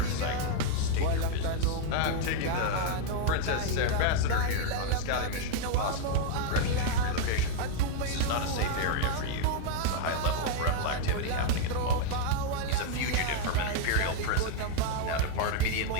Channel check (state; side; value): different; both; correlation 0.00